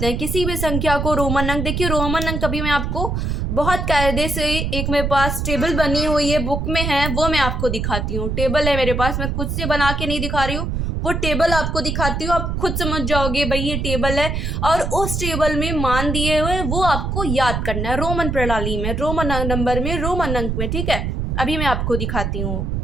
हैं? किसी भी संख्या को रोमन अंक। देखिए रोमन अंक अभी मैं आपको बहुत कायदे से, एक मेरे पास टेबल बनी हुई है, बुक में है, वो मैं आपको दिखाती हूँ। टेबल है मेरे पास, मैं खुद से बना के नहीं दिखा रही हूँ, वो टेबल आपको दिखाती हूँ, आप खुद समझ जाओगे भाई ये टेबल है। और उस टेबल में मान दिए हुए वो आपको याद करना है, रोमन प्रणाली में, रोमन नंबर में, रोमन अंक में, ठीक है। अभी मैं आपको दिखाती हूँ।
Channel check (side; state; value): right; noise; rumble, 1 dB below the sound